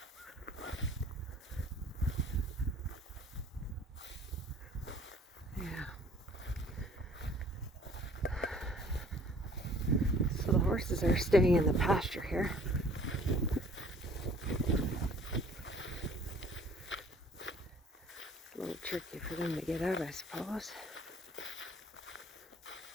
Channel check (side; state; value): both; normal; correlation 0.53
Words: So the horses are staying in the pasture here. It's a little tricky for them to get out, I suppose.